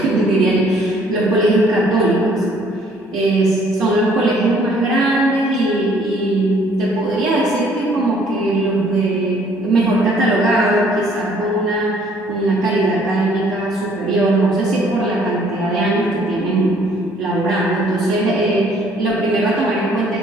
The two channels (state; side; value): normal; both; correlation 0.61